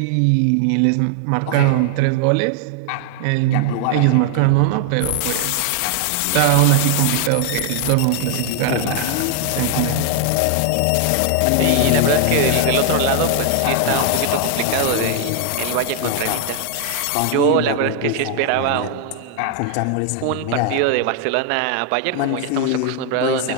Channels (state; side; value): different; both; correlation 0.00